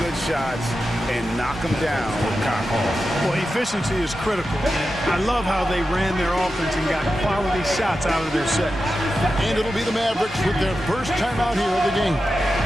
shots, and knock them down with confidence. Well, efficiency is critical. I love how they ran their offense and got quality shots out of their set. And it'll be the Mavericks with their first time out here of the game.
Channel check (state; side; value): normal; both; correlation 0.91